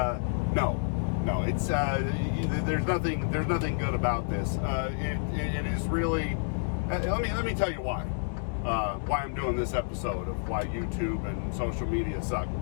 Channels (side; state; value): right; silent; digital silence